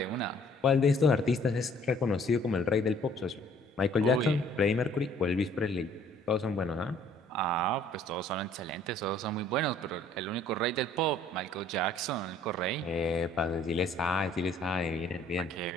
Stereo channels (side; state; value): both; normal; correlation 0.58